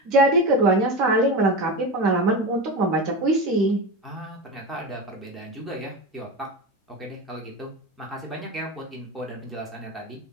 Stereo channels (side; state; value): both; normal; correlation 0.22